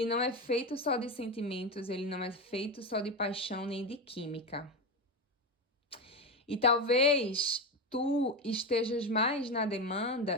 não é feito só de sentimentos, ele não é feito só de paixão nem de química. E talvez tu estejas mais na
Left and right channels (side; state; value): both; normal; correlation 0.16